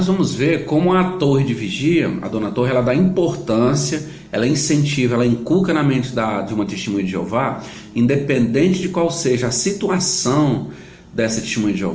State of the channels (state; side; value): identical; both; correlation 1.00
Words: vamos ver como a torre de vigia, a dona Torre, ela dá importância, ela incentiva, ela inculca na mente de uma testemunha de Jeová, independente de qual seja a situação dessa testemunha de